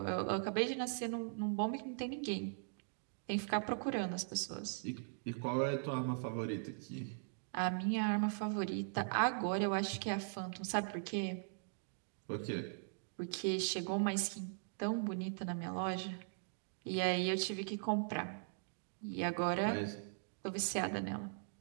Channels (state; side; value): silent; left; digital silence